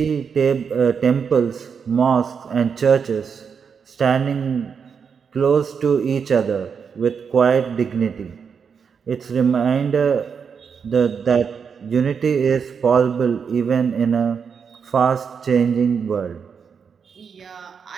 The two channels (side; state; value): left; quieter; 6.4 dB